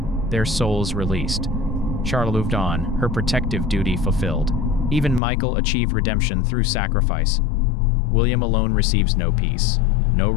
their souls released. Charlotte moved on, her protective duty fulfilled. Even Michael achieved redemption through sacrifice. William alone receives no peace, no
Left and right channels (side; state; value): right; drops out; at 5.2 s